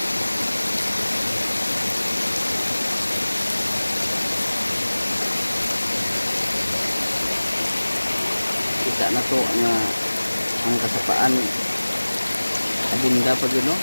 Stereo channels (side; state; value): both; inverted; correlation -1.00